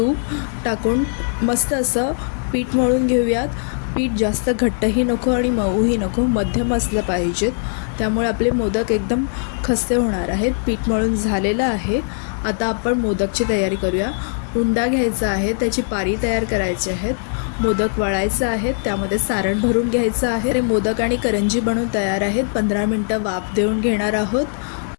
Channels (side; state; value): right; silent; digital silence